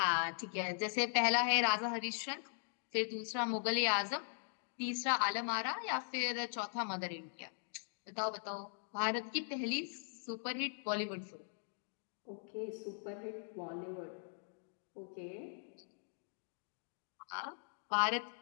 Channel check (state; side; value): silent; right; digital silence